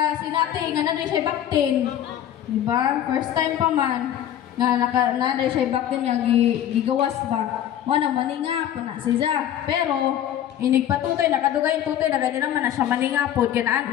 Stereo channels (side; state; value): right; quieter; 11.0 dB